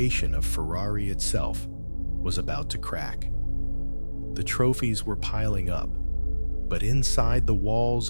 of Ferrari itself was about to crack. The trophies were piling up, but inside the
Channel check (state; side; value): inverted; both; correlation -1.00